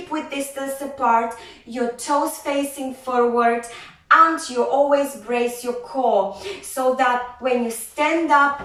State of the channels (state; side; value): identical; both; correlation 1.00